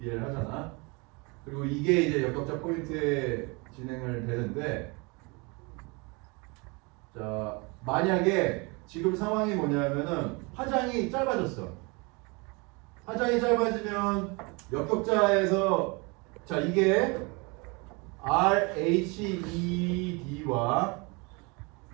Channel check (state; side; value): quieter; left; 28.9 dB